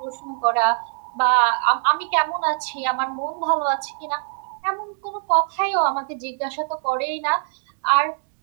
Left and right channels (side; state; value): left; silent; digital silence